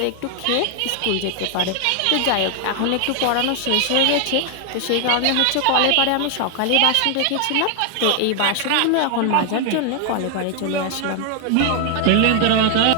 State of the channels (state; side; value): different; both; correlation 0.00